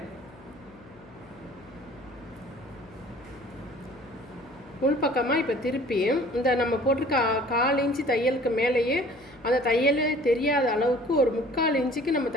உள்பக்கமாக இப்போ திருப்பி இந்த நம்ம போட்டிருக்க 1/4 இன்ச்சு தையலுக்கு மேலேயே அந்த தையலே தெரியாத அளவுக்கு ஒரு 3/4 இன்ச்சுக்கு நம்ம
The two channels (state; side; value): noise; left; hum, 24 dB below the sound